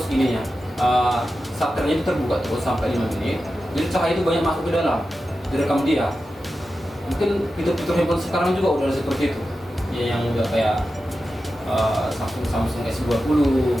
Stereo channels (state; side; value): normal; both; correlation 0.91